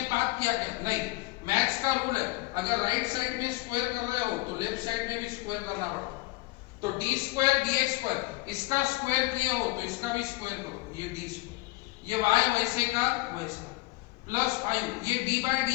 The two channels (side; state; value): right; quieter; 21.4 dB